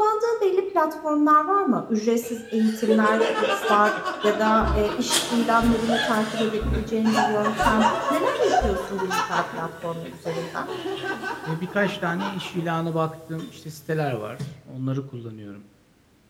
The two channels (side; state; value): both; identical; correlation 1.00